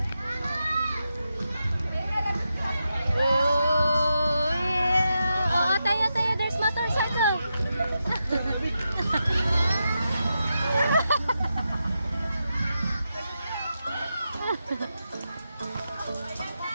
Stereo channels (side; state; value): both; inverted; correlation -0.87